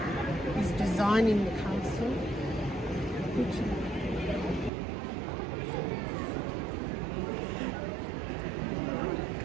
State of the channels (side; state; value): left; drops out; at 4.7 s